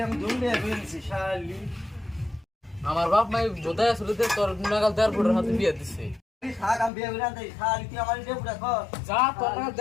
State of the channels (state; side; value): drops out; right; at 6.9 s